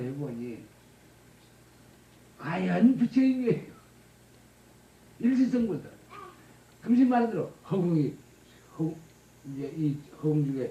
해보니 과연 부처인 거예요. 일시성분도 금신 말한 대로 이제 이 허공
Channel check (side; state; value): both; identical; correlation 1.00